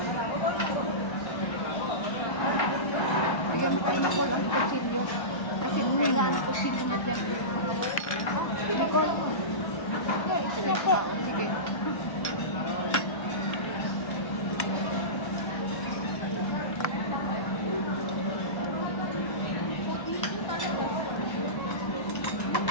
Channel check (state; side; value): late; right; 1.3 ms